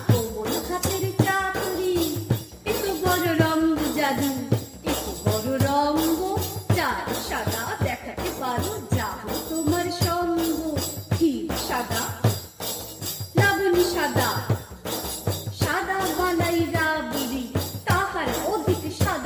কোমল হাতের চাকরি। এত বড় রঙ্গ জাদু, এত বড় রঙ্গ চাঁদ সাদা দেখাতে পারো, যাব তোমার সঙ্গ। ক্ষীর সাদা, লাবণী সাদা, সাদা বালাই রাবড়ি, তাহার অধিক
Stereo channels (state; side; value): identical; both; correlation 1.00